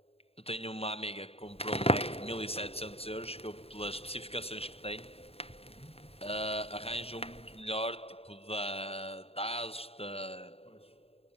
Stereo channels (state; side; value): late; right; 0.29 ms